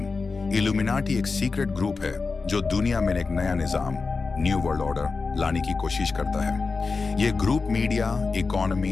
इल्यूमिनाटी एक सीक्रेट ग्रुप है जो दुनिया में एक नया निजाम, न्यू वर्ल्ड ऑर्डर लाने की कोशिश करता है। ये ग्रुप मीडिया,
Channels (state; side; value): quieter; right; 4.3 dB